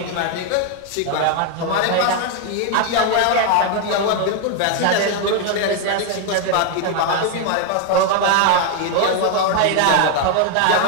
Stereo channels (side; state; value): both; different; correlation 0.01